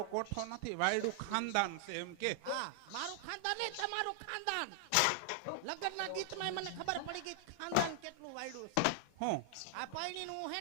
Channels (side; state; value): both; different; correlation 0.00